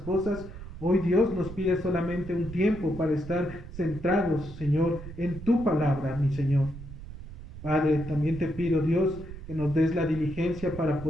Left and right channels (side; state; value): right; noise; rumble, 13 dB below the sound